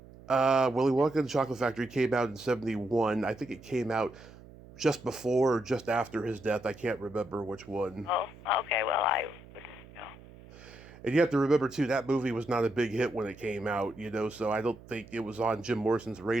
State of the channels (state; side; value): noise; right; hum, 20 dB below the sound